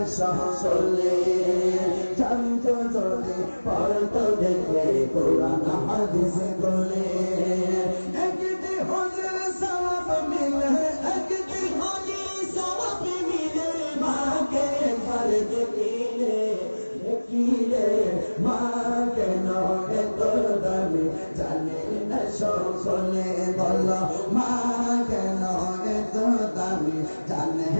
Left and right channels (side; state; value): both; inverted; correlation -1.00